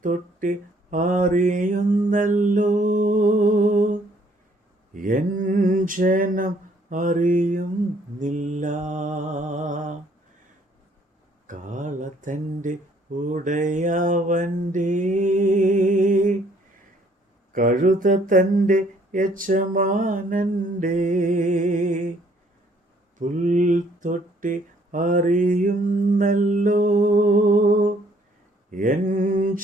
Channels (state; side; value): normal; both; correlation 0.63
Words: അറിയുന്നല്ലോ എൻ ജനം അറിയുന്നില്ല. കാളത്തൻ്റെ ഉടയവൻ്റെ കഴുത തൻ്റെ യജമാനൻ്റെ പുൽത്തൊട്ടി അറിയുന്നല്ലോ എൻ